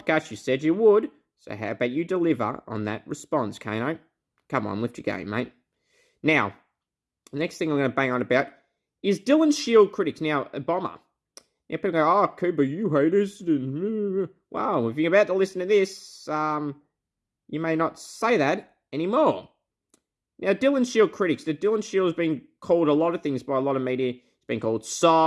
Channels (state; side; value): identical; both; correlation 1.00